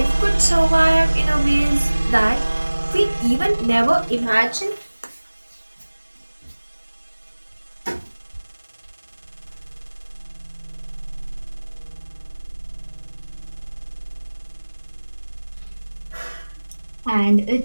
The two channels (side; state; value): both; inverted; correlation -1.00